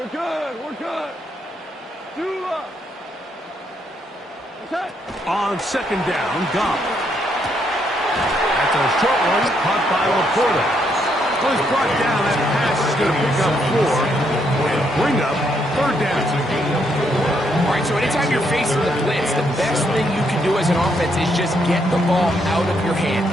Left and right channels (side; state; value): both; normal; correlation 0.75